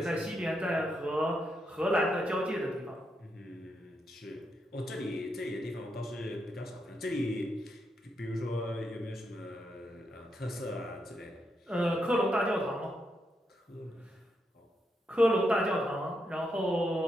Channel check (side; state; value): both; normal; correlation 0.82